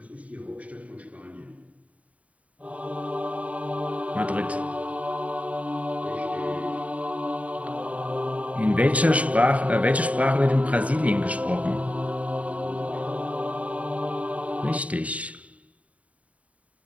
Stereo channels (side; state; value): left; late; 0.068 ms